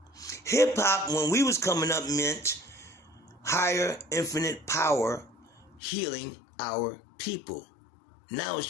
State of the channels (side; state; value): right; drops out; at 5.8 s